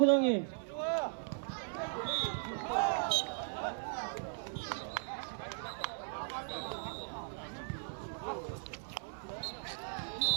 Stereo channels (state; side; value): silent; left; 53 dB below the other